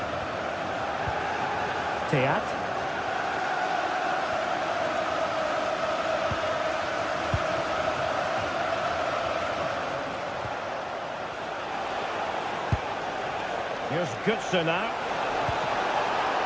Teat. Here's Goodson now.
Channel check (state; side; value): identical; both; correlation 1.00